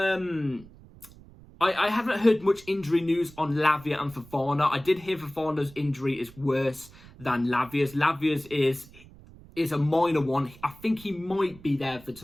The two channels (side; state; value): right; noise; rumble, 22 dB below the sound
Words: I haven't heard much injury news on Lavia and Fofana. I did hear Fofana's injury is worse than Lavia's. Lavia's is a minor one. I think he might be there for